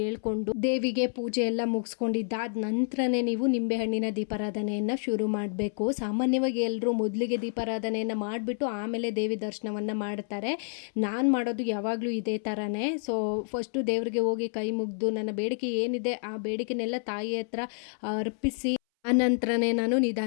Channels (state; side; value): silent; right; 59 dB below the other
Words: ದೇವಿಗೆ ಪೂಜೆ ಎಲ್ಲ ಮುಗಿಸ್ಕೊಂಡಿದ್ದಾದ ನಂತರನೇ ನೀವು ನಿಂಬೆಹಣ್ಣಿನ ದೀಪಾರಾಧನೆಯನ್ನು ಶುರು ಮಾಡಬೇಕು. ಸಾಮಾನ್ಯವಾಗಿ ಎಲ್ಲರೂ ಮೊದಲಿಗೆ ದೀಪಾರಾಧನೆಯನ್ನು ಮಾಡಿಬಿಟ್ಟು ಆಮೇಲೆ ದೇವಿ ದರ್ಶನವನ್ನು ಮಾಡ್ತಾರೆ. ನಾನು ಮಾಡೋದು ಯಾವಾಗಲೂ ಇದೇ ಥರನೇ. ಸೊ ಫಸ್ಟು ದೇವರಿಗೆ ಹೋಗಿ ಕೈ ಮುಗಿದು ನನ್ನ ಬೇಡಿಕೆ ಏನಿದೆ ಆ ಬೇಡಿಕೆನೆಲ್ಲ ತಾಯಿ ಹತ್ರ ಅರ್ಪಿಸಿ ಆನಂತರನೇ ನಾನು